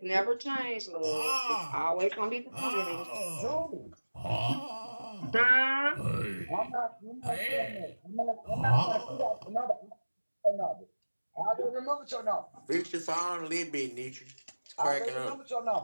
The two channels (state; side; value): inverted; both; correlation -1.00